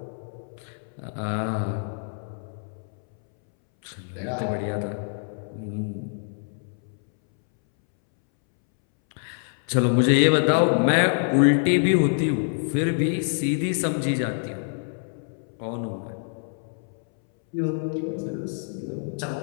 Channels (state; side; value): silent; right; 61 dB below the other